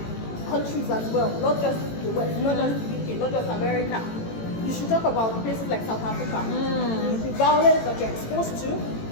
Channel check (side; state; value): right; late; 18 ms